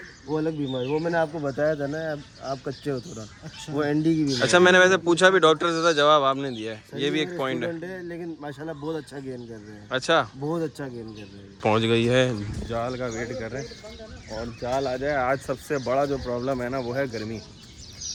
वो अलग बीमारी, वो मैंने आपको बताया था ना, आप कच्चे हो थोड़ा। अच्छा, वो एंडी की बीमारी। अच्छा, मैंने वैसे पूछा भी डॉक्टर से था, जवाब आपने दिया है, ये भी एक पॉइंट है। लेकिन माशाल्लाह बहुत अच्छा गेन कर रहे हैं। अच्छा, बहुत अच्छा गेन कर रहे हैं। पहुंच गई है, जाल का वेट कर रहे हैं और जाल आ जाए। आज सबसे बड़ा जो प्रॉब्लम है ना वो है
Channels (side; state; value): both; identical; correlation 1.00